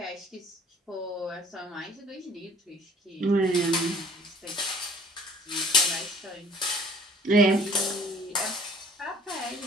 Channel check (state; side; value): normal; both; correlation 0.52